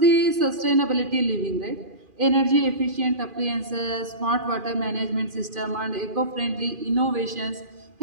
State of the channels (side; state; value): left; late; 2.4 ms